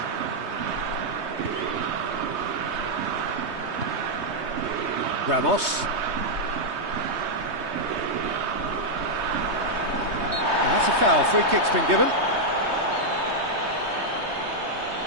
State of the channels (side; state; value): left; late; 3.2 ms